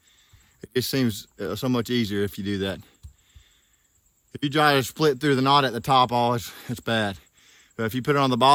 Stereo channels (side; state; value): both; identical; correlation 1.00